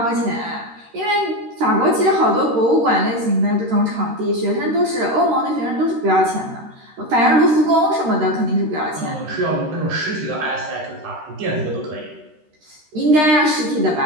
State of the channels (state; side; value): late; left; 13 ms